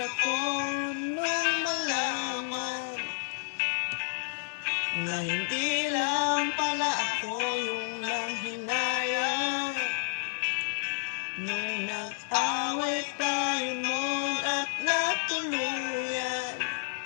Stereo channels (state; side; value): silent; right; 58 dB below the other